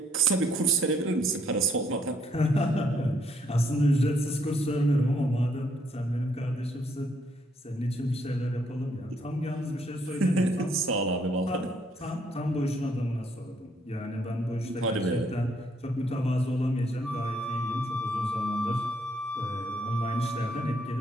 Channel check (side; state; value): both; normal; correlation 0.69